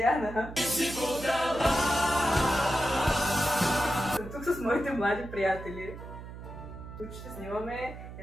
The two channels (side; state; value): right; noise; hum, 12 dB below the sound